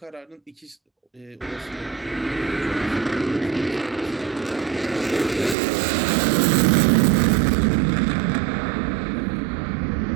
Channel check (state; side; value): drops out; left; at 5.6 s